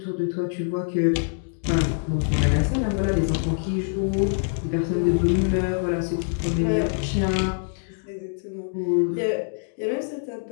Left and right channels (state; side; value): silent; right; digital silence